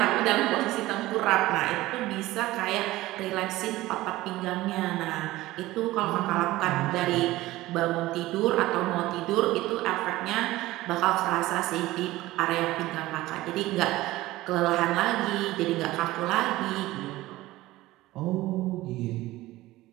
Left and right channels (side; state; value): left; quieter; 17.5 dB